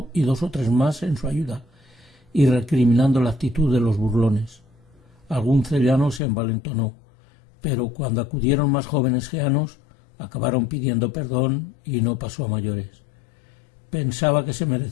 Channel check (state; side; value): drops out; right; at 6.2 s